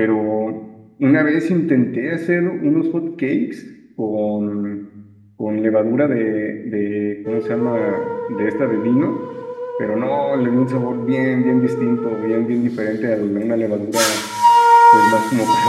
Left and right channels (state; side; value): identical; both; correlation 1.00